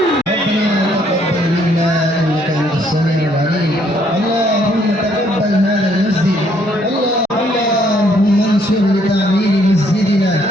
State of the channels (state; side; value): normal; both; correlation 0.67